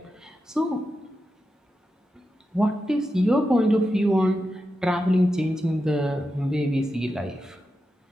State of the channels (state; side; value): normal; both; correlation 0.89